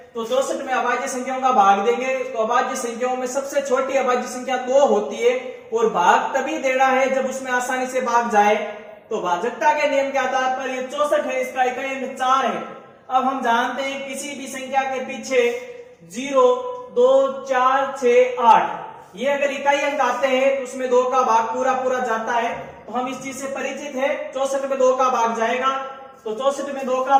तो 64 में अभाज्य संख्याओं का भाग देंगे, तो अभाज्य संख्याओं में सबसे छोटी अभाज्य संख्या 2 होती है, और भाग तभी देना है जब उसमें आसानी से भाग जाए। तो भाजकता के नियम के आधार पर ये 64 है, इसका इकाई अंक 4 है। अब हम जानते हैं किसी भी संख्या के पीछे 0, 2, 4, 6, 8 ये अगर इकाई अंक आते हैं तो उसमें 2 का भाग पूरा पूरा जाता है। तो हम इस चीज से परिचित है। 64 में 2 का भाग जाएगा, तो 64 में 2 का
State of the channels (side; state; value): both; identical; correlation 1.00